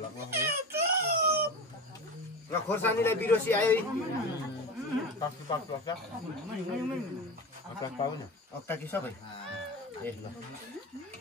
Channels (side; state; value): both; normal; correlation 0.28